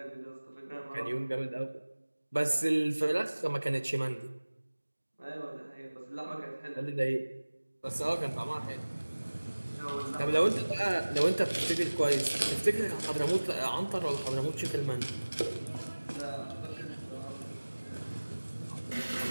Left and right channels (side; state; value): both; inverted; correlation -1.00